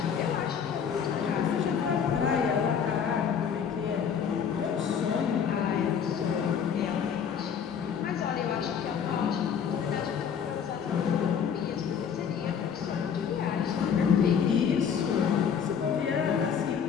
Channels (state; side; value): quieter; right; 7.5 dB